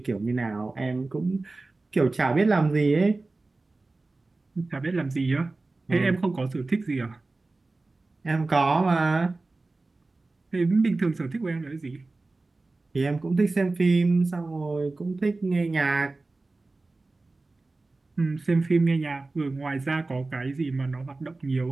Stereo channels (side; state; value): left; quieter; 3.3 dB